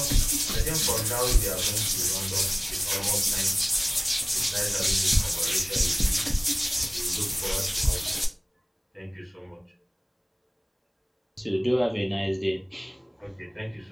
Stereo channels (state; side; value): identical; both; correlation 1.00